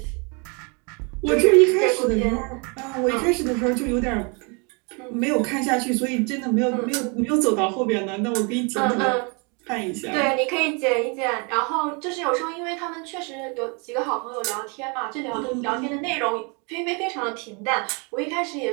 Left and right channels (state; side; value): quieter; left; 33.1 dB